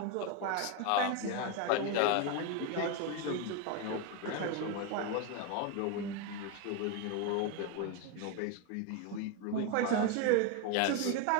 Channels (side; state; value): both; different; correlation 0.02